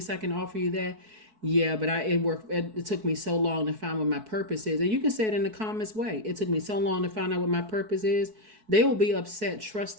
I can offer you that. Yeah, but it took me so long to find what my purpose is. And you can say it in the calmest way. It took me so long to find out what my purpose is. They will be upset,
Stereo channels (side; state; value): left; late; 4.6 ms